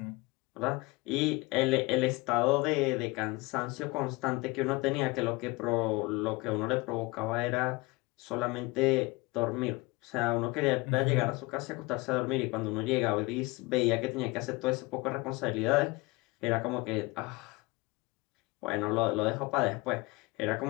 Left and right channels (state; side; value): quieter; right; 23.6 dB